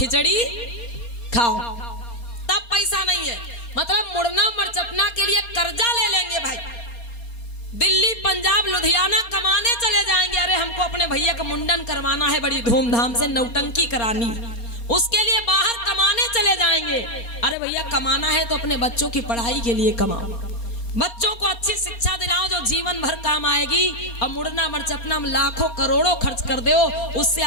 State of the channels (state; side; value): late; right; 4.3 ms